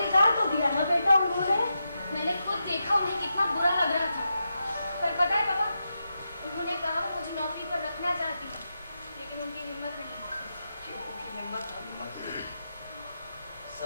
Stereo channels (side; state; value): both; inverted; correlation -0.87